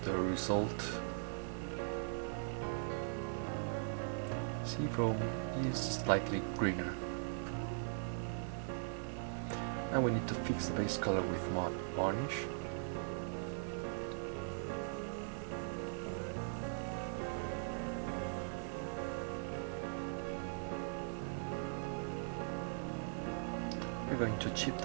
the result. Sea foam is slightly greener. Now we need to fix the base color with matte varnish. We're going to chip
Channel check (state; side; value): silent; left; digital silence